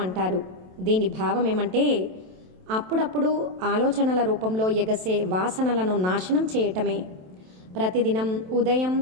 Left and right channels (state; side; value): late; left; 27 ms